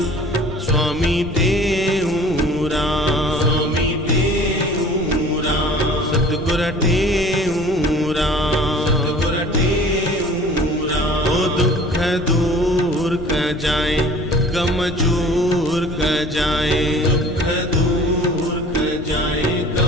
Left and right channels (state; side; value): noise; left; rumble, 12 dB below the sound